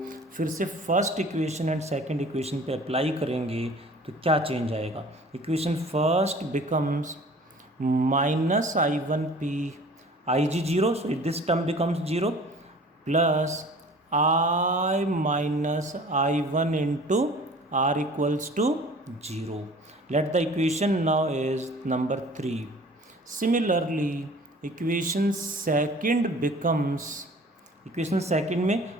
फिर से first equation and second equation पे अप्लाई करेंगे तो क्या चेंज आएगा। Equation first becomes minus I one P, I G zero, so this term becomes zero, plus I minus I one into R equals to zero. Let the equation now is number 3। Similarly equation second becomes, equation second में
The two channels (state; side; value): normal; both; correlation 0.47